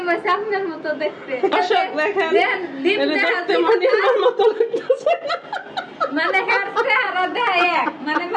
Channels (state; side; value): identical; both; correlation 1.00